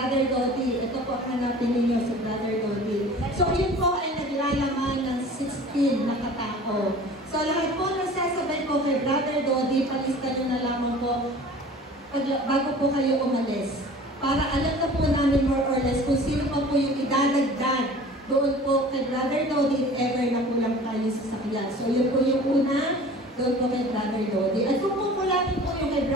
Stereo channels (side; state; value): both; normal; correlation 0.44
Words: Dodi. Ito po, hanapin ninyo si Brother Dodi. So yun po ay naglalaman ng 16 na katao. So lahat po nagsasabay po kay Brother Dodi, palista nyo na lamang po bago po kayo umalis. Para alam na po namin more or less kung sino pa po yung idadagdag doon po kay Brother Dodi if ever na kulang tayo sa sakyan. So yun po yung una, doon po kay Brother Dodi. At kung kukulapin po yung kay